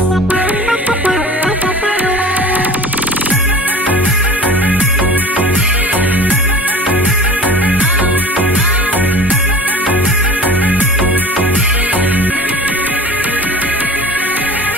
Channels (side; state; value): both; normal; correlation 0.41